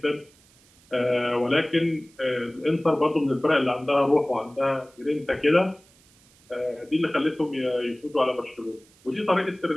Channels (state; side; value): noise; right; hiss, 29 dB below the sound